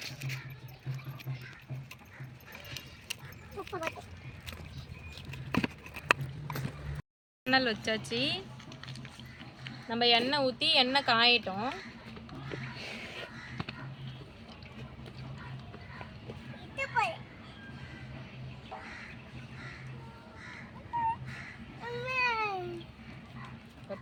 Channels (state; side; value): identical; both; correlation 1.00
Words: எண்ணெய் வச்சாச்சு. நம்ம எண்ணெய் ஊற்றி எண்ணெய் காயட்டும்.